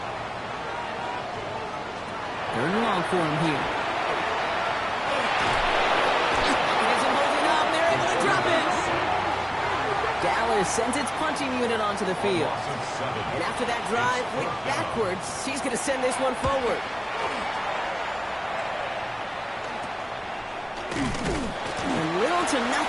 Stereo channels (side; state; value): both; identical; correlation 1.00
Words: 3rd and long for him here. He isn't holding up. They're able to drop it. Dallas sends its punting unit onto the field. And after that drive went backwards, she's going to send this one forward. And little to